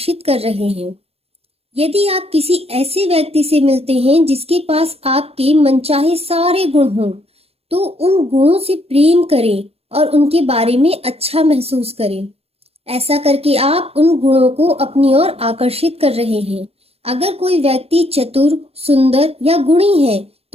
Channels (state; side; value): late; left; 0.29 ms